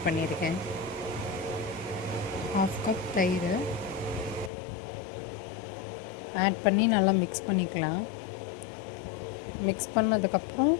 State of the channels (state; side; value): drops out; right; at 4.5 s